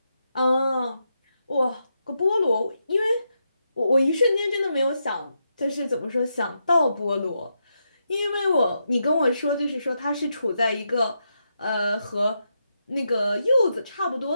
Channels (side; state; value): both; inverted; correlation -0.83